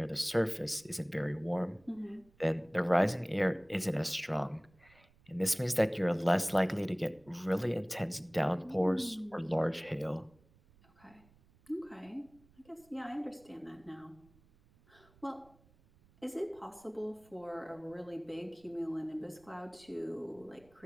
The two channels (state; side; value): noise; right; rumble, 29 dB below the sound